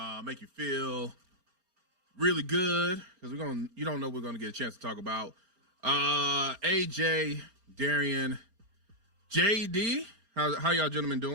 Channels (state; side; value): late; left; 4.3 ms